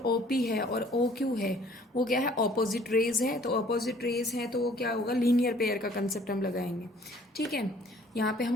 OP है और OQ है वो क्या है, ऑपोजिट रेज है, तो ऑपोजिट रेज है तो वो क्या होगा, लीनियर पेयर का कंसेप्ट हम लगाएंगे। ठीक है, यहाँ पे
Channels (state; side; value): normal; both; correlation 0.57